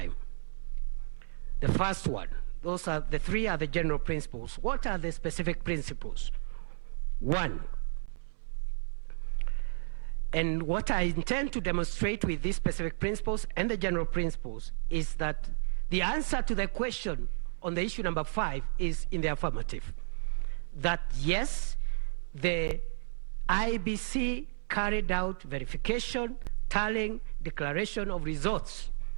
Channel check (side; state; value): left; silent; 56 dB below the other